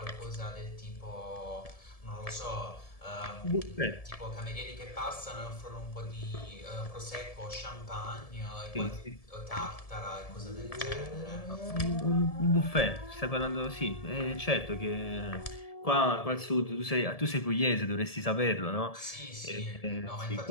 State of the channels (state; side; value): late; right; 1.7 ms